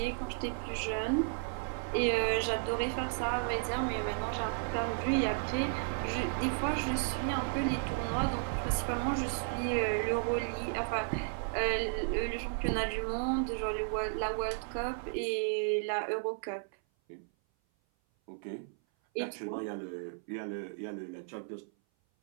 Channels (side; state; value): left; silent; 55 dB below the other